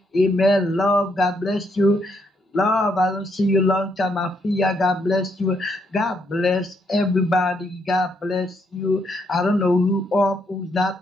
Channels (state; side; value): normal; both; correlation 0.75